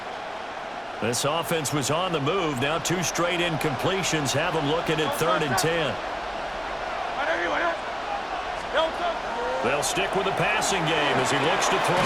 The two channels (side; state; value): both; identical; correlation 1.00